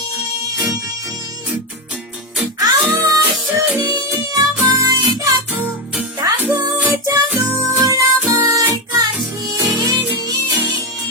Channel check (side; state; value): both; normal; correlation 0.10